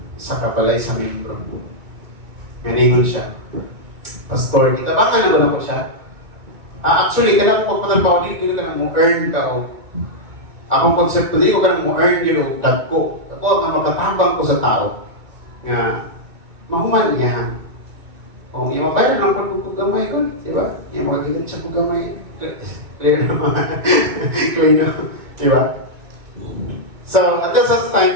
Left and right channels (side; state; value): left; late; 2.1 ms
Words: sa kabalay sa membro. Ganingon siya. Pastor, kitabangan naman ako siya. Actually, kailangan ko pagpatalbaw, hindi ko ka mo earn ka o akong konsepto, hindi ko ka mo earn yun o dag ko. Ako nga makatabang ko sa tao nga mahuman niya. Kung yung mabayaran ng pagkukugamay ko, di ba? Yung magagilan siya kugamay. Clear naman. Clear naman. Di ba? So, at that time,